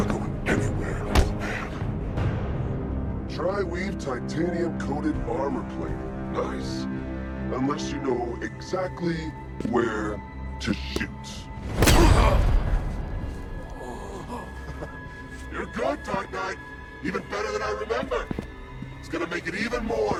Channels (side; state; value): both; identical; correlation 1.00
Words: going anywhere, old man. Tri-weave titanium-coated armor plating. Nice. Unless you know exactly where to shoot. You're good, Dark Knight. Even better than I remember. It's gonna make it even more